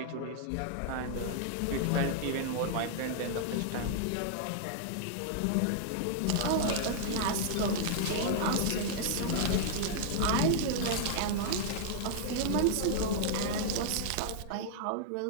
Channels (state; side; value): different; both; correlation -0.01